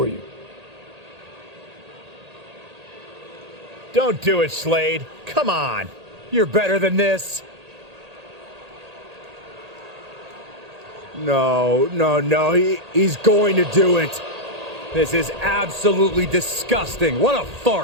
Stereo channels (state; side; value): late; left; 1.8 ms